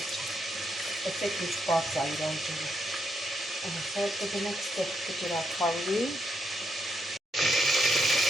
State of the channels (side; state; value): both; normal; correlation 0.79